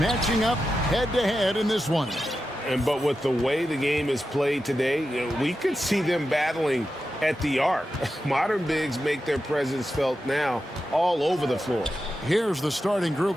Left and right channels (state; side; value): normal; both; correlation 0.90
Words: up head-to-head in this one. But with the way the game is played today, we could see them battling at the arc. Modern bigs make their presence felt now all over the floor. Here's the starting